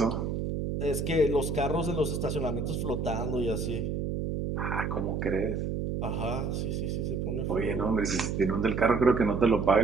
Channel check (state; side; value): noise; right; hum, 2 dB below the sound